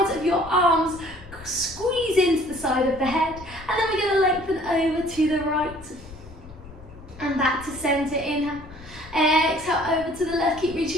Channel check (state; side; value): noise; left; rumble, 18 dB below the sound